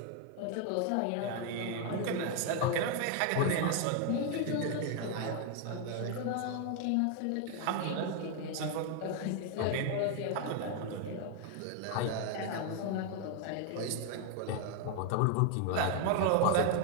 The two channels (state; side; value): different; both; correlation 0.00